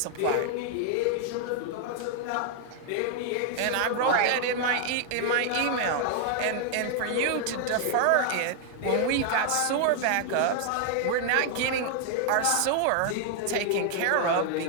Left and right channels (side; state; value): both; different; correlation 0.00